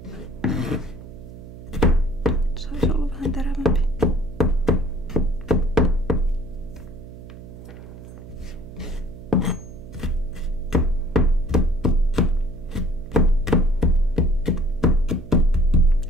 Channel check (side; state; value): right; noise; hum, 15 dB below the sound